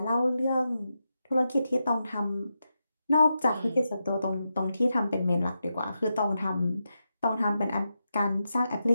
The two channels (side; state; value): both; inverted; correlation -0.87